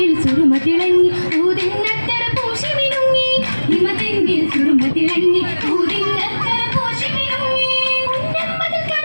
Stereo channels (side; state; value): both; inverted; correlation -1.00